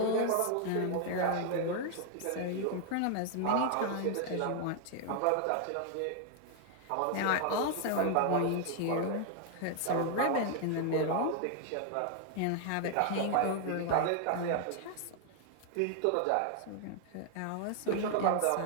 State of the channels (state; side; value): different; both; correlation 0.00